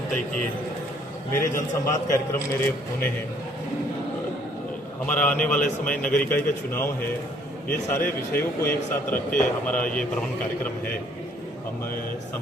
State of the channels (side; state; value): both; normal; correlation 0.62